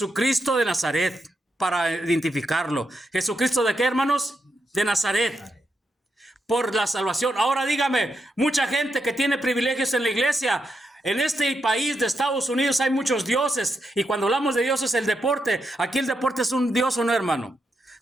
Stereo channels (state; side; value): normal; both; correlation 0.83